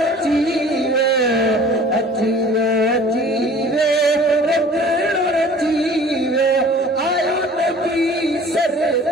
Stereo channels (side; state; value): both; normal; correlation 0.48